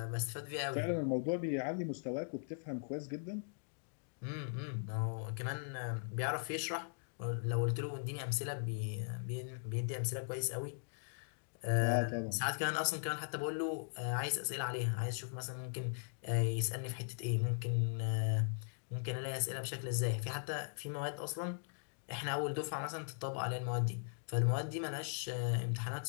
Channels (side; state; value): right; silent; digital silence